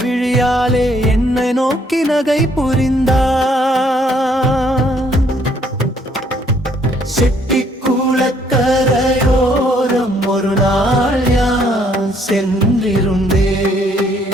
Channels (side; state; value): both; normal; correlation 0.66